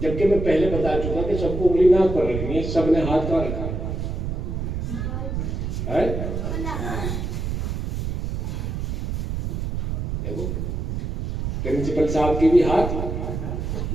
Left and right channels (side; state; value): right; noise; rumble, 3 dB below the sound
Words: मैं पहले बता चुका कि सबको उंगली नाक पर रखनी है, सबने हाथ कहाँ रखा है? देखो, प्रिंसिपल साहब की भी हाथ